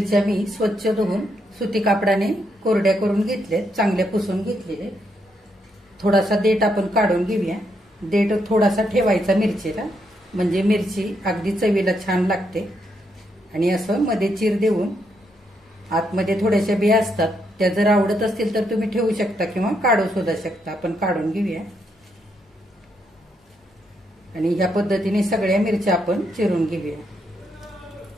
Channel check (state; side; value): normal; both; correlation 0.78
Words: मी स्वच्छ धुवून सुती कापडाने कोरड्या करून घेतल्यात, चांगल्या पुसून घेतलेले. थोडासा देठ आपण काढून घेऊया. देठ थोडासा ठेवायचा मिरचीला म्हणजे मिरची अगदी चवीला छान लागते. आणि असं मध्ये चिर देऊन आतमध्ये थोड्याशा बिया असतात त्या जर आवडत असतील तर तुम्ही ठेवू शकता किंवा काढू सुद्धा शकता. आपण काढून घेऊया आणि ह्या पद्धतीने सगळ्या मिरच्या आपण चिरून घेऊया.